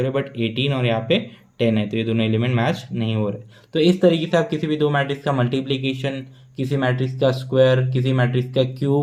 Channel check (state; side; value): identical; both; correlation 1.00